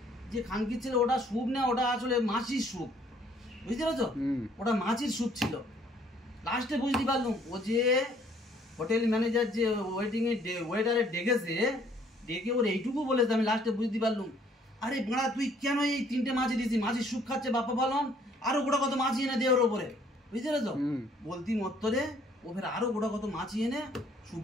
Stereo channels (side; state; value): both; normal; correlation 0.62